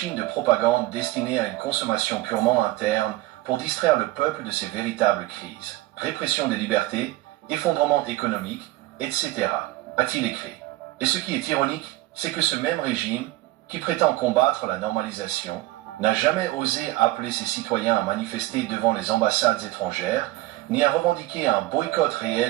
de propagande destinée à une consommation purement interne pour distraire le peuple de ses véritables crises. Répression des libertés, effondrement économique, etc., a-t-il écrit. Et ce qui est ironique, c'est que ce même régime, qui prétend combattre la normalisation, n'a jamais osé appeler ses citoyens à manifester devant les ambassades étrangères, ni à revendiquer un boycott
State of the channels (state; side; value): quieter; left; 18.1 dB